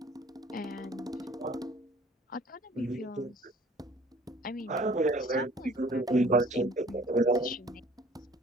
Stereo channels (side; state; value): both; normal; correlation 0.53